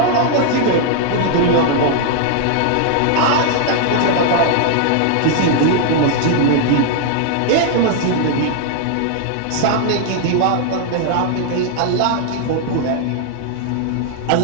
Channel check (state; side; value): different; both; correlation 0.00